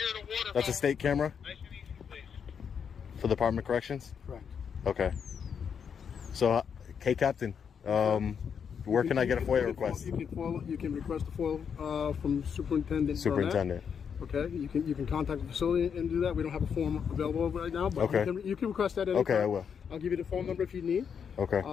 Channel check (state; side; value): quieter; right; 7.1 dB